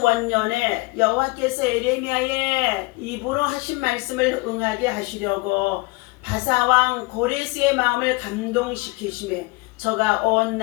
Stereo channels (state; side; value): quieter; right; 24.9 dB